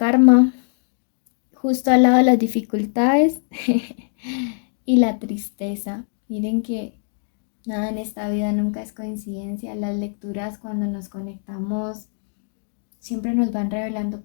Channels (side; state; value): right; silent; digital silence